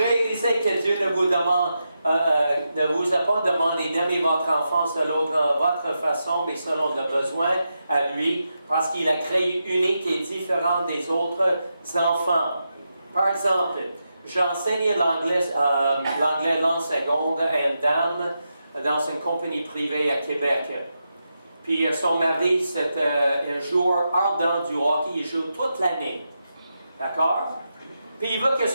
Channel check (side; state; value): both; inverted; correlation -0.87